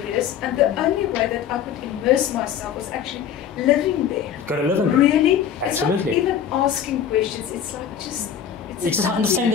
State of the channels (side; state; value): right; quieter; 8.6 dB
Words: and the only way that I could immerse myself was actually living there. Got to live in there. Really? Absolutely. It's not even asking questions. It's like just. You just understand